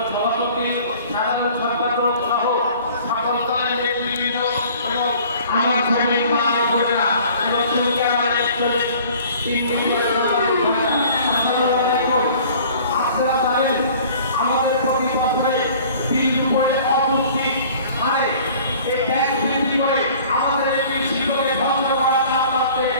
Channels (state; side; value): inverted; both; correlation -0.50